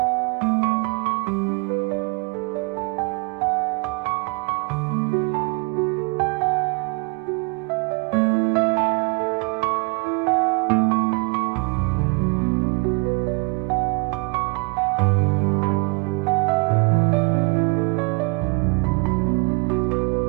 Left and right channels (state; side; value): quieter; left; 31.0 dB